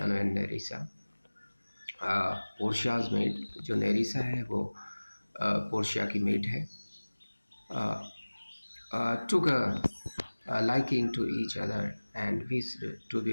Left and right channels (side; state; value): both; inverted; correlation -1.00